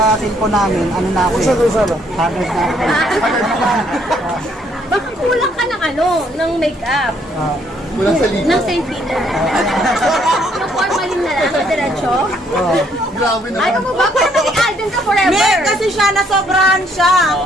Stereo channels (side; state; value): both; normal; correlation 0.68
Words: cellphone namin, ano na ako eh. Haggard na ako. Baka kulang ka ng ng makeup. Kulang sa libo. Ng St. Peter. Yung formalin na lang, diretso. Grabe naman. Ayaw mo ba kung maging Alden ka forever? Hindi, kasi siya nasobrahan siya.